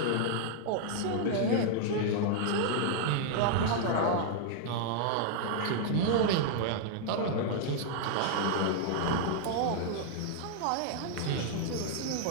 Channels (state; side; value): different; both; correlation 0.00